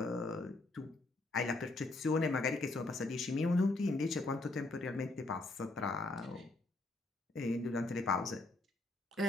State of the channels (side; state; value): right; quieter; 3.0 dB